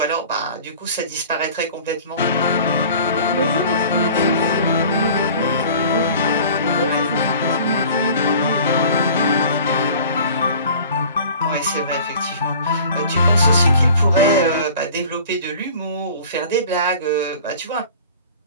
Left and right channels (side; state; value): both; inverted; correlation -0.45